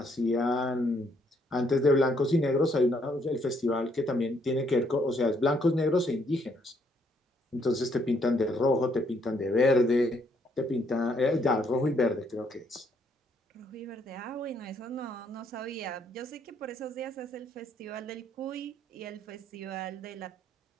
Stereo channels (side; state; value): both; normal; correlation 0.70